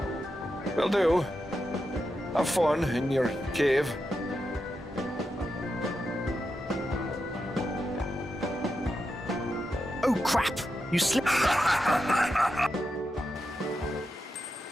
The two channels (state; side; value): normal; both; correlation 0.87